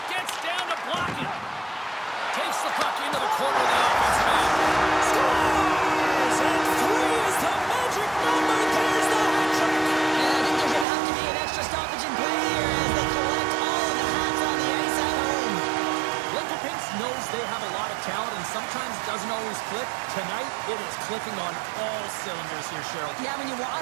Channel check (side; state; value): left; drops out; at 10.9 s